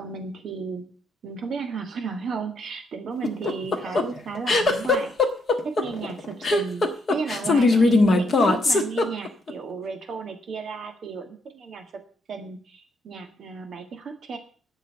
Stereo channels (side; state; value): both; normal; correlation 0.74